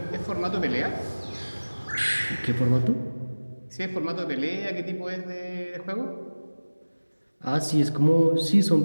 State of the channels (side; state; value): both; inverted; correlation -1.00